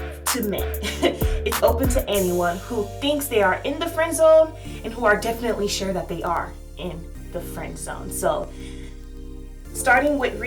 men. It's open to anyone who thinks they are in the friend zone and who are definitely sure that they are in the friend zone. So starting with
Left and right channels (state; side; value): identical; both; correlation 1.00